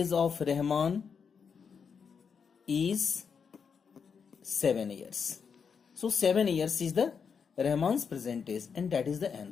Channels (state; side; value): quieter; right; 6.3 dB